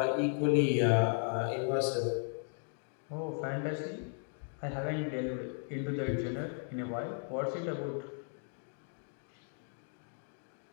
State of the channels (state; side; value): silent; right; 54 dB below the other